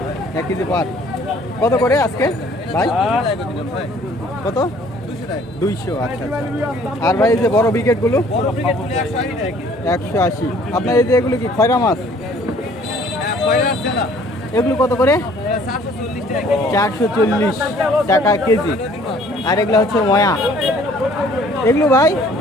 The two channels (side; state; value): both; normal; correlation 0.57